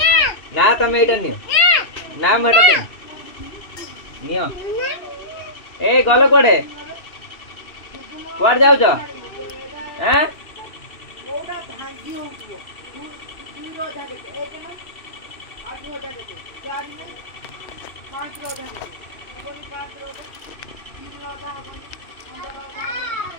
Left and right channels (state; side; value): late; right; 2.7 ms